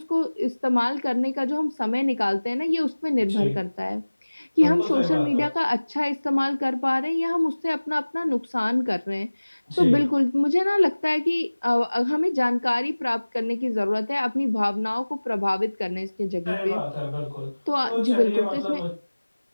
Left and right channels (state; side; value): inverted; both; correlation -1.00